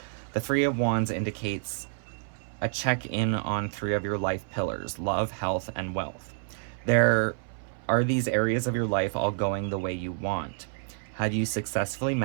The Three of Wands indicates a check-in on three of your life pillars: love, health, and wealth. There are these areas of your life all going the way you want. Have you successfully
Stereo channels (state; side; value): silent; left; 59 dB below the other